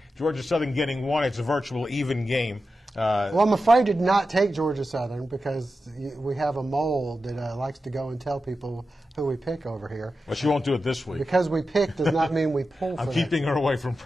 Georgia Southern getting one. It's a virtual even game. Well, I'm afraid to not take Georgia Southern because we have a mole that likes to go and tell people who we pick over here. Well, she won't do it this week. Because we pick does not mean we pull for I'm keeping her away from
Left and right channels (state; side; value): normal; both; correlation 0.91